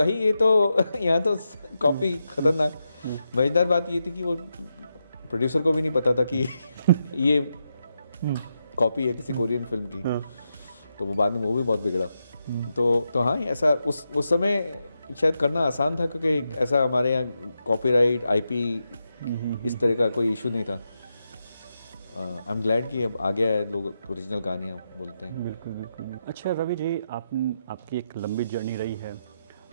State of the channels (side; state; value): both; inverted; correlation -0.86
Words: ये तो यहाँ तो कॉपी खतरनाक। मजेदार बात ये थी कि वो प्रोड्यूसर को भी नहीं पता था कि ये कॉपी है किसी कोरियन फिल्म की। तो वो बाद में वो भी बहुत बिगड़ा। तो हाँ, ऐसा उस समय शायद करना आसान था क्योंकि ऐसा हमारे यहाँ कॉपीराइट, आईपी इस तरह का कोई इशू नहीं था। आई एम ग्लैड कि अब आ गया है, लोग ओरिजिनल कहानियाँ बोलते हैं। बिल्कुल बिल्कुल। अच्छा रवि जी, आपकी एक लंबी जर्नी रही है।